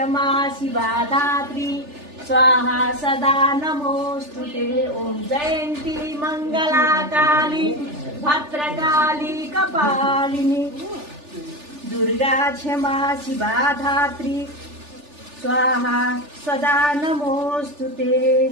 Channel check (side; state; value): left; late; 3.4 ms